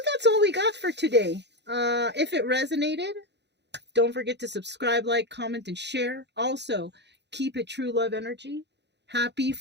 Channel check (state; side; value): late; left; 0.50 ms